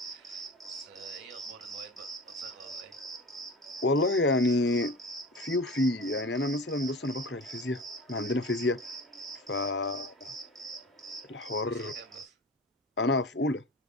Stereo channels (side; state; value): both; normal; correlation 0.36